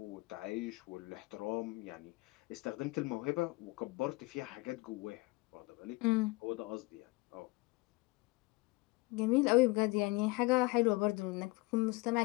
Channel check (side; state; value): right; quieter; 23.9 dB